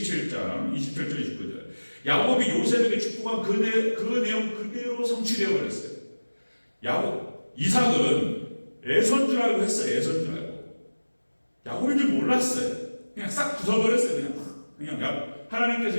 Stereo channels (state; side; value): inverted; both; correlation -1.00